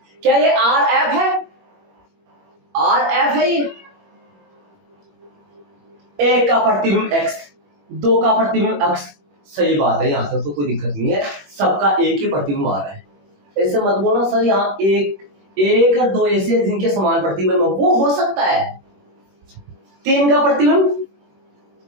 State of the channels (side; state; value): left; late; 21 ms